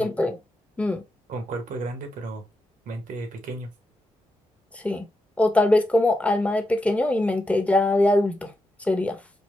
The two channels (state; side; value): normal; both; correlation 0.86